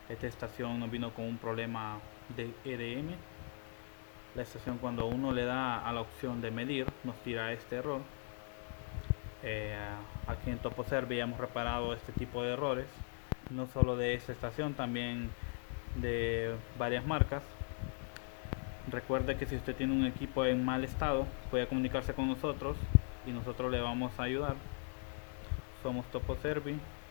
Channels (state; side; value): silent; right; 52 dB below the other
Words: Esta estación nos vino con un problema de EDM. La estación, cuando uno le da a la opción de medir, nos tira este error. Eh, Aquí en TopoServi hemos reparado este tipo de errores, no solo de esta estación, también de varias marcas. Recuerde que si usted tiene un equipo en mal estado, puede comunicarse con nosotros y nosotros le vamos a ayudar. Somos TopoServi,